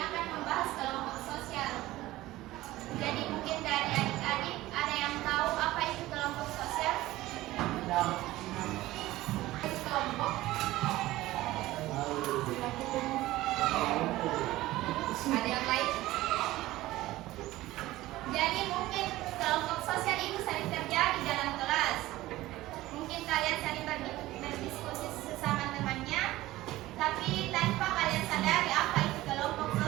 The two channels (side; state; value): left; quieter; 17.0 dB